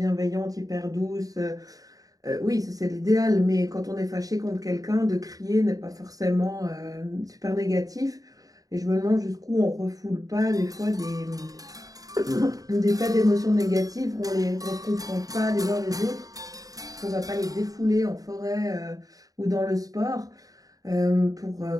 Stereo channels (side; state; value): left; late; 0.17 ms